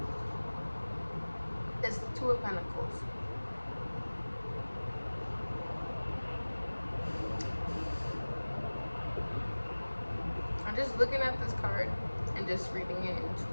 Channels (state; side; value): inverted; both; correlation -1.00